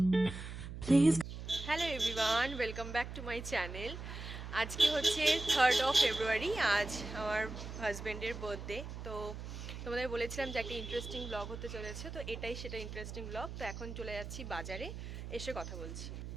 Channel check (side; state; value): right; noise; hum, 8 dB below the sound